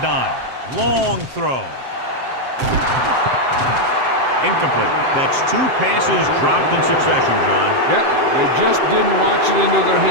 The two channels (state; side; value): late; left; 7.6 ms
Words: Long throw. Incomplete. That's 2 passes dropped in succession, John. Yep, they just didn't watch it into their